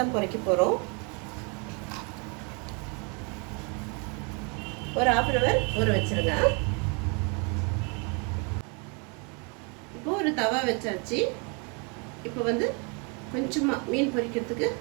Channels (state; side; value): quieter; left; 34.0 dB